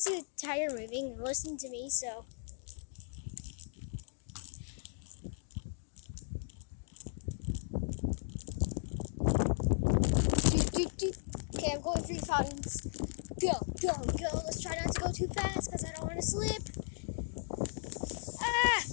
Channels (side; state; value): right; silent; digital silence